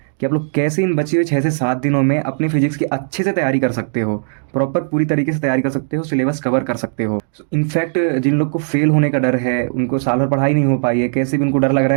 कि आप लोग कैसे इन बचे हुए 6 से 7 दिनों में अपनी फिजिक्स की अच्छे से तैयारी कर सकते हो। प्रॉपर पूरी तरीके से तैयारी कर सकते हो, सिलेबस कवर कर सकते हो। इनफैक्ट जिन लोग को फेल होने का डर है, उनको साल भर पढ़ाई नहीं हो पाई है, कैसे भी उनको डर लग रहा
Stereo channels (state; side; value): silent; left; digital silence